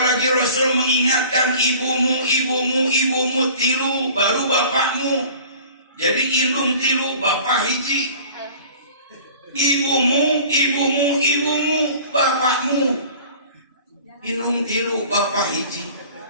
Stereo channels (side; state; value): both; inverted; correlation -0.45